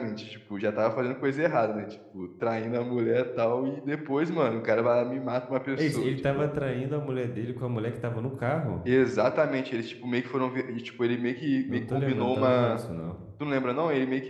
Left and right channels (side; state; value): both; identical; correlation 1.00